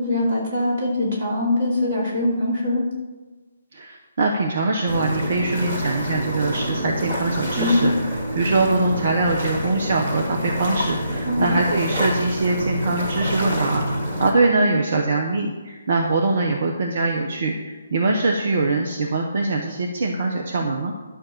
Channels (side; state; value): both; inverted; correlation -0.75